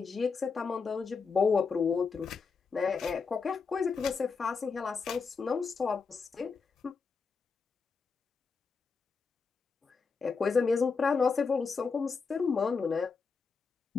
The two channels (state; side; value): quieter; right; 5.0 dB